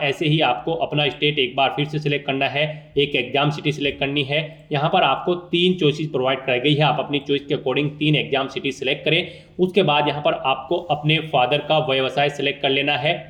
ऐसे ही आपको अपना स्टेट एक बार फिर से सिलेक्ट करना है, एक एग्जाम सिटी सिलेक्ट करनी है। यहाँ पर आपको 3 चॉइसेस प्रोवाइड कराई गई है, आप अपनी चॉइस के अकॉर्डिंग 3 एग्जाम सिटी सिलेक्ट करें। उसके बाद यहाँ पर आपको अपने फादर का व्यवसाय सिलेक्ट कर लेना है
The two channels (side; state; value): both; identical; correlation 1.00